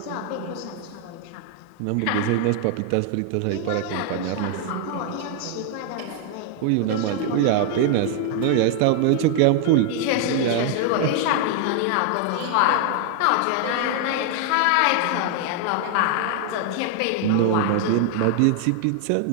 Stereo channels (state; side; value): different; both; correlation 0.00